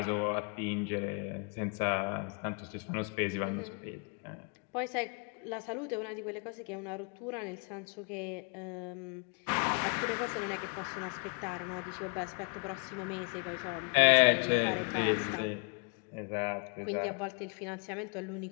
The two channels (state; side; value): quieter; right; 35.8 dB